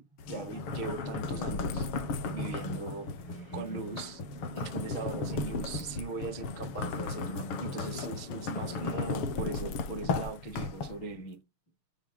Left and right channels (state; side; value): late; right; 6.6 ms